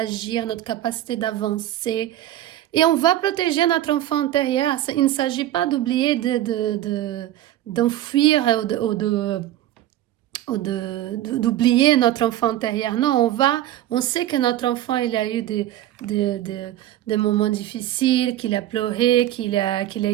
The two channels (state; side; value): quieter; left; 13.3 dB